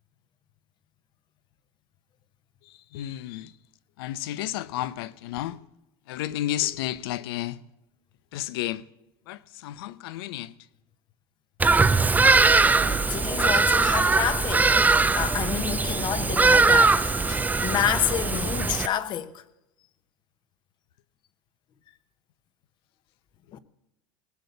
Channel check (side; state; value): both; normal; correlation 0.46